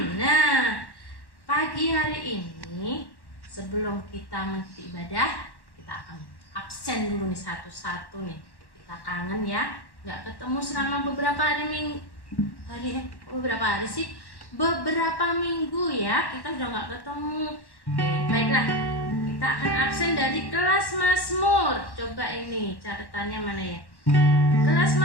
Nah, pagi hari ini sebelum kita mengikuti ibadah, kita akan absen dulu nih satu-satu nih. Kita kangen ya, nggak ketemu selama beberapa minggu ya. Kita udah nggak ketemu. Oke, baiklah. Kita akan absen dari kelas Mazmur. Coba ini catatannya mana ya? Kelas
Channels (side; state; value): right; late; 1.1 ms